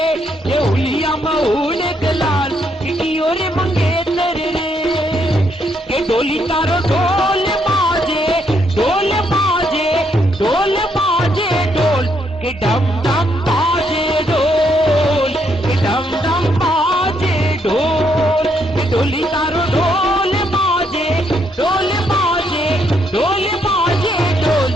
ये उलिया मऊन गलाल की ओर मंगेतर रे, के डोली तारो ढोल बाजे ढोल बाजे ढोल बाजे ढोल के डम डम बाजे ढोल के डम डम बाजे ढोल के डोली तारो ढोल बाजे ढोल बाजे ढोल बाजे ढोल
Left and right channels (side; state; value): both; normal; correlation 0.74